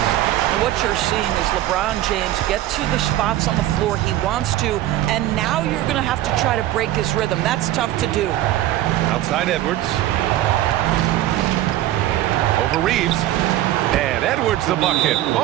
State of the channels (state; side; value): quieter; left; 14.3 dB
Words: And what you're seeing is LeBron James get to the spots on the floor he wants to, and now you're going to have to try to break his rhythm. That's tough to do. Outside Edwards. Over Reeves. And Edwards the bucket